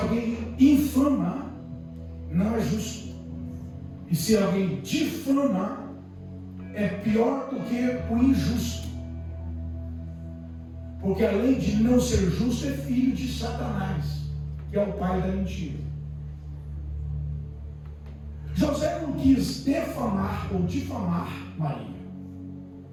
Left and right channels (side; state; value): both; identical; correlation 1.00